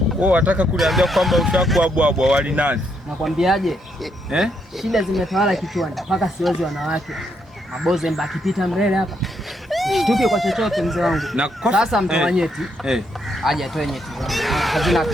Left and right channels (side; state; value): both; normal; correlation 0.76